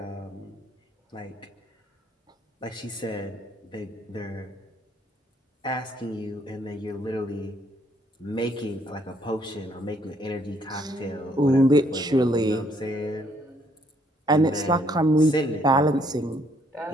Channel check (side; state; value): both; normal; correlation 0.68